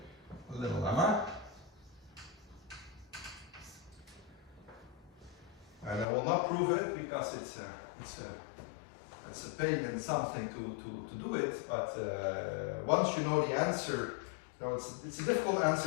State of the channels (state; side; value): drops out; right; at 6.1 s